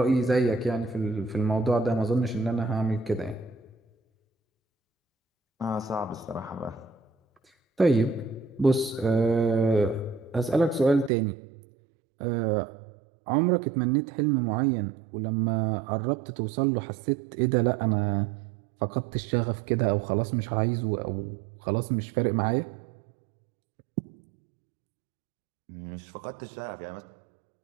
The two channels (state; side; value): drops out; left; at 11.1 s